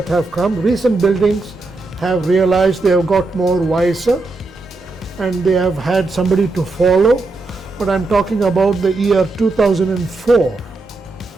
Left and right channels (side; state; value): left; quieter; 3.4 dB